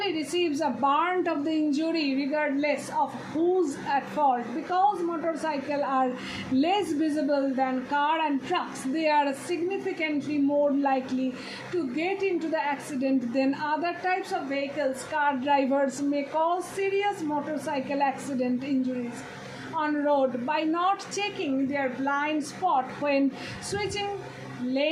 receives a brunt of the injury regardless of who's at fault. Because motorcycles are less visible than car and trucks, they are significantly more likely to get into the accident than other types of vehicles. Car drivers may cause serious motorcycle accident injuries on road by not checking their blind spot when switching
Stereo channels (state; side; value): identical; both; correlation 1.00